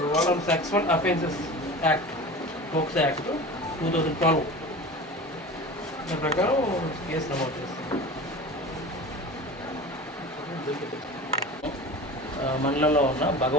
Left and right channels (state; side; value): normal; both; correlation 0.34